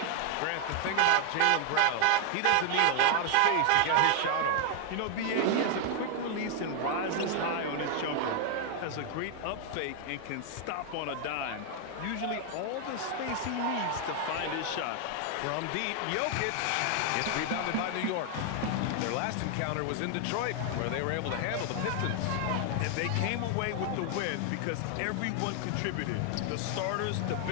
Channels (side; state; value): both; different; correlation 0.00